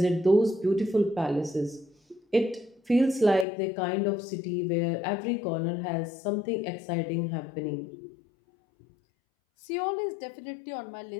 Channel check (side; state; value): right; drops out; at 3.5 s